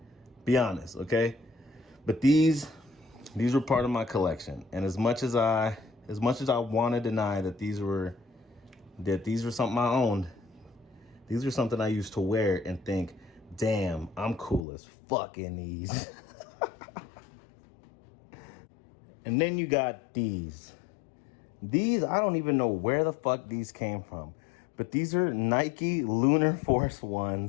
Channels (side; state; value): right; drops out; at 14.6 s